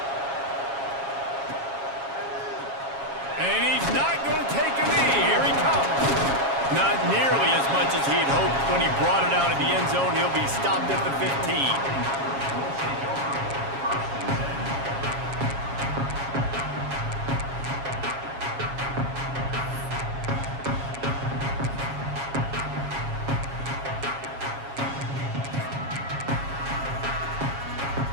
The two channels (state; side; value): late; left; 7.3 ms